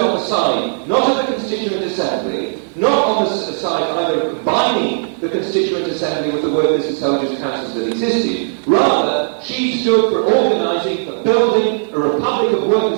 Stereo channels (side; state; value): left; silent; digital silence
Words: the side, not of the Constituent Assembly, not on the side either of combining the Constituent Assembly with the workers' and soldiers' councils that existed. Rather, she stood for organising, for building a republic of